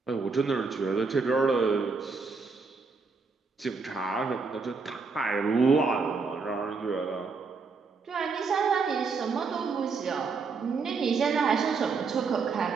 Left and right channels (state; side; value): quieter; left; 4.7 dB